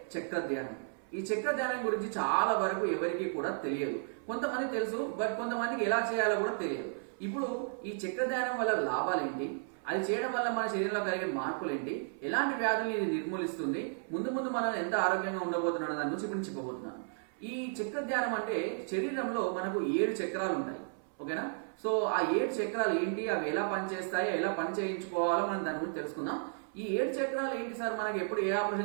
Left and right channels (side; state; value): left; silent; 55 dB below the other